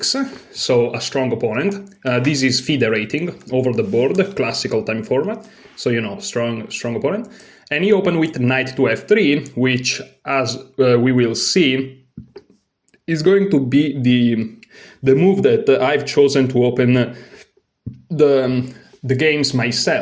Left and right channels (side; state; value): both; identical; correlation 1.00